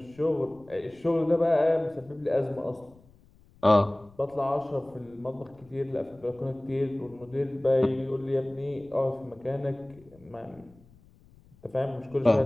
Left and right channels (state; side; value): noise; left; rumble, 27 dB below the sound